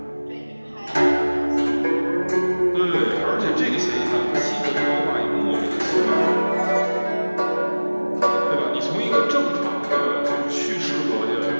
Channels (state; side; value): inverted; both; correlation -1.00